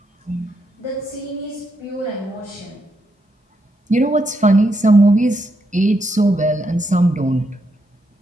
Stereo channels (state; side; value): normal; both; correlation 0.80